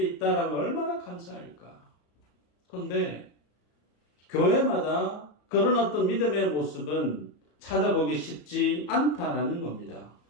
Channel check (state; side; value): late; right; 34 ms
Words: 있다라고 얼마나 감사할까. 그런데 교회마다 그런 어떤 믿음의 모습은 찾아보기 쉽지 않다라는 겁니다.